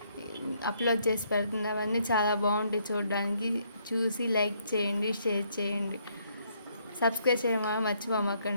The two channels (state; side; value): inverted; both; correlation -0.71